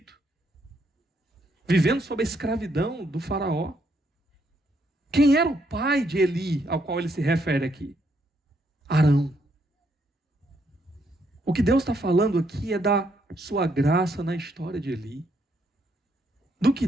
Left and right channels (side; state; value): both; normal; correlation 0.74